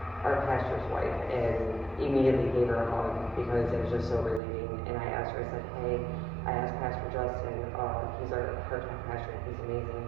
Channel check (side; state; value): left; drops out; at 4.4 s